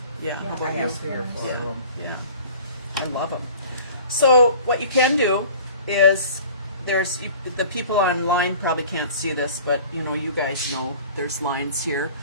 Yeah. How Yeah. about I you? have 3 or 4 of them. Yeah. I love them. So what you can do is the people online probably can't see this, but you know, you guys know there's lines here.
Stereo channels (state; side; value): inverted; both; correlation -0.45